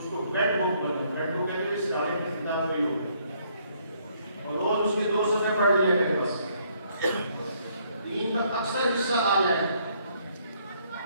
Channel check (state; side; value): inverted; both; correlation -0.68